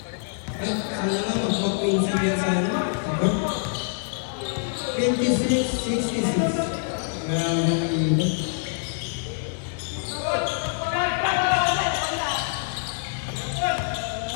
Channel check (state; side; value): silent; right; digital silence